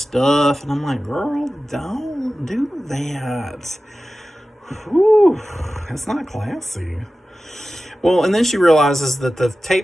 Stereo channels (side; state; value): both; normal; correlation 0.95